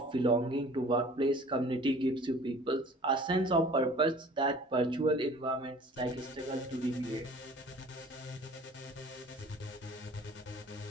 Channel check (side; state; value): both; normal; correlation 0.48